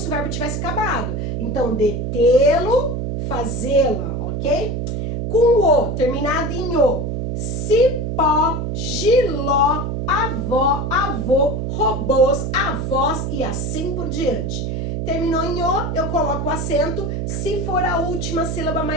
o verbo tivesse acabado. Então, detê-lo, fazê-la, ok? Com o, terminado em o. Cipó, giló, avó, avô, robôs, avós e assim por diante. Terminou em o, eu coloco o acento se for a última sílaba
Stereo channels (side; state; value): right; noise; hum, 2 dB below the sound